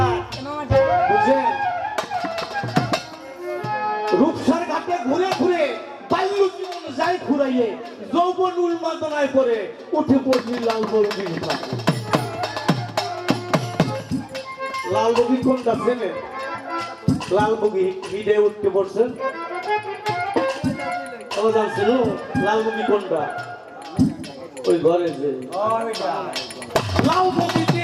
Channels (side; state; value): both; identical; correlation 1.00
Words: বুঝছেন রূপসার ঘাটে ঘুরে ঘুরে বাল্য জীবন যাই ঘুরাইয়ে যৌবন উন্মাদনায় পরে উঠে পড়লি লালবগি লালবগি কোনটা চেনেন লালবগি ভিড়ে উঠতে পড়ছেন জানছিল লালবগি কোনটা ওই ঘরে যে লালবগিতে